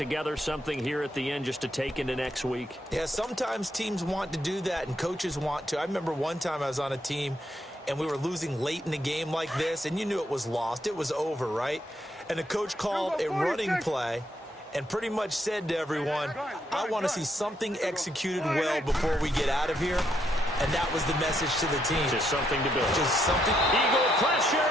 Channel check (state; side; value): normal; both; correlation 0.76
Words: something here at the end just to take into next week? Yeah, sometimes teams want to do that and coaches want to. I remember one time I was on a team and we were losing late in the game like this, and you knew it was lost. It was over, right? And the coach called a running play and pretty much said to everyone, I want to see something executed well before we get out of here. And that was the message to the team. Just something to build. Just something. Eagle pressure,